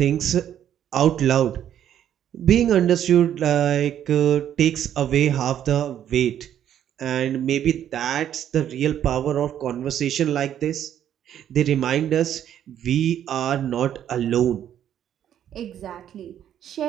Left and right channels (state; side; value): quieter; left; 10.3 dB